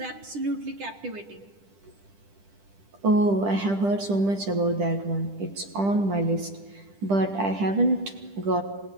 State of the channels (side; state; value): left; late; 10 ms